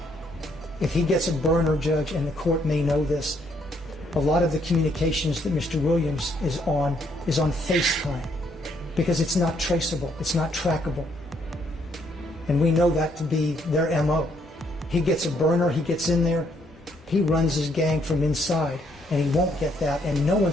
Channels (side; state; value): both; normal; correlation 0.70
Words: If he gets a burner, Judge, and the court may know this, a lot of the communications that Mr. Williams is on FaceTime because it's not traceable, it's not trackable. And we know that to be their MO. He gets a burner, he gets in there, he runs his gang from inside, and he won't get that, and no